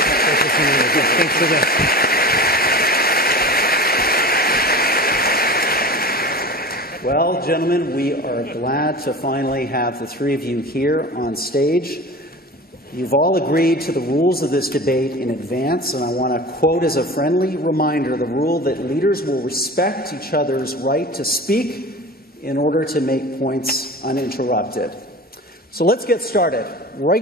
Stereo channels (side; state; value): both; normal; correlation 0.34